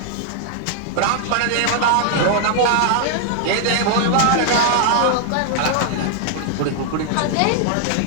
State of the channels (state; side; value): different; both; correlation 0.00